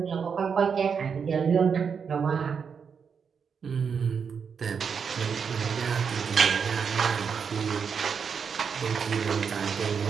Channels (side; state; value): left; quieter; 6.4 dB